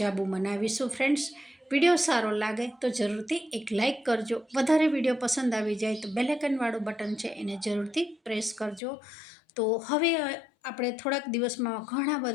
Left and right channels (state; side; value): drops out; right; at 8.8 s